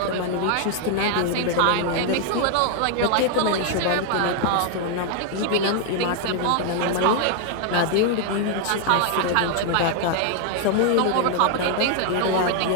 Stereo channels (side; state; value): both; different; correlation 0.00